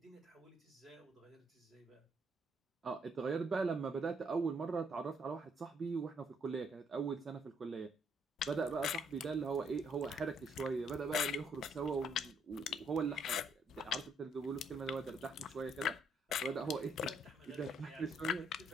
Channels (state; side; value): normal; both; correlation 0.70